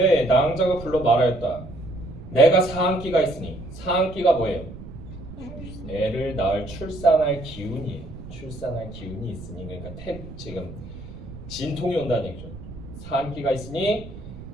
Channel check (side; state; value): right; noise; rumble, 14 dB below the sound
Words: 낭자가 불러 말하였다. 내가 사한기가 있으니. 사한기가 뭐예요? 애를 낳을 출산할 기운이에요. 출산할 기운이 있으니. 그러니까 지금 진통이 온다는 얘기죠. 사한기가 있으니